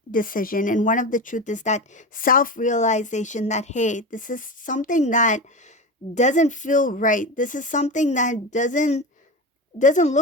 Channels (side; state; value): both; normal; correlation 0.24